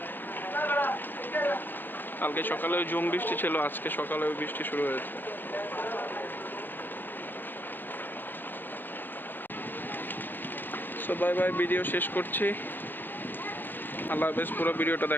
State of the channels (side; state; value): right; late; 0.092 ms